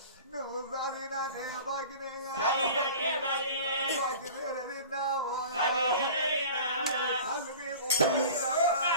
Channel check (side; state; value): both; inverted; correlation -0.39